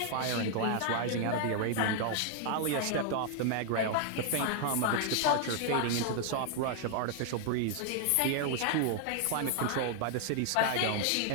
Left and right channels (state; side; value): different; both; correlation 0.00